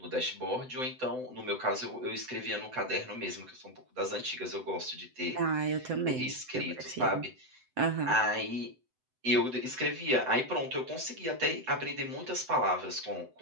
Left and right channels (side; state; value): left; late; 7.9 ms